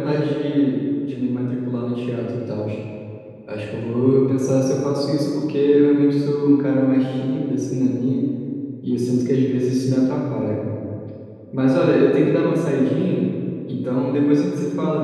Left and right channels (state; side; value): identical; both; correlation 1.00